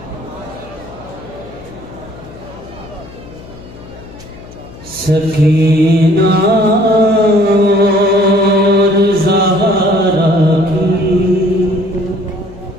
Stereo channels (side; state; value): left; noise; hum, 18 dB below the sound